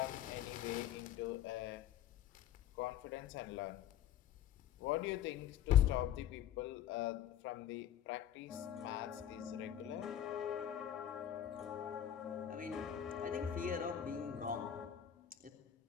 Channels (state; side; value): quieter; right; 10.5 dB